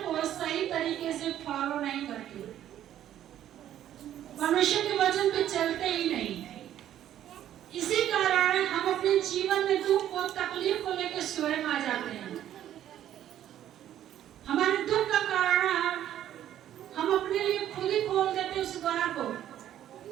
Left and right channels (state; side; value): quieter; left; 11.5 dB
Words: को सही तरीके से फॉलो नहीं करते, परमेश्वर के वचन पे चलते ही नहीं। इसी कारण हम अपने जीवन में दुख और तकलीफ को लेकर स्वयं आ जाते हैं। हमारे दुख का कारण हम अपने लिए खुद ही खोल देते उस द्वार को,